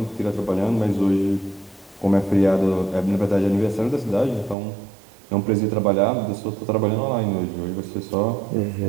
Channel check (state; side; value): drops out; left; at 4.5 s